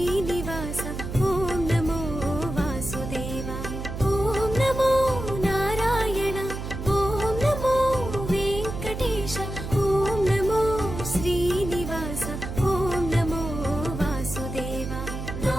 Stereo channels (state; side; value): noise; right; hum, 6 dB below the sound